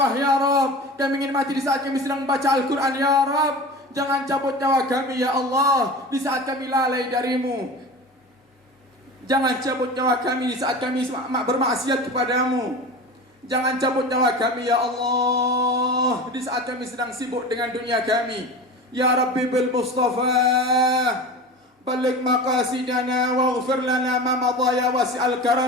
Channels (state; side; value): normal; both; correlation 0.32